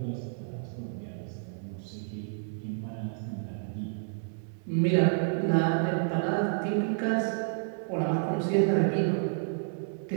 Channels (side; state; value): left; silent; 58 dB below the other